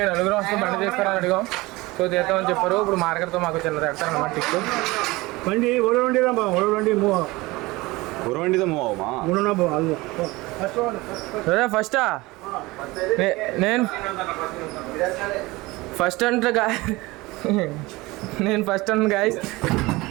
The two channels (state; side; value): quieter; left; 21.4 dB